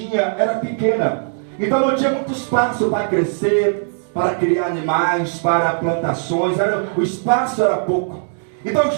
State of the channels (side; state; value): left; silent; digital silence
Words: era pequena. Então não tinha muito espaço para crescer, para criar animais, para plantações. O espaço era pouco. Então